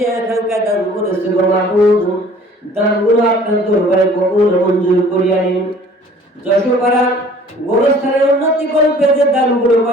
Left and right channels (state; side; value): normal; both; correlation 0.51